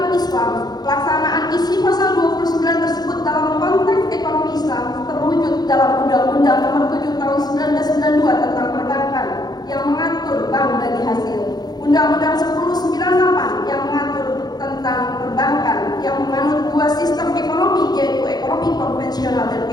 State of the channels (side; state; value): right; late; 0.19 ms